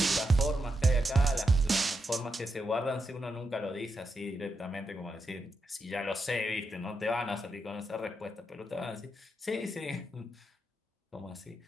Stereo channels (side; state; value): both; normal; correlation 0.84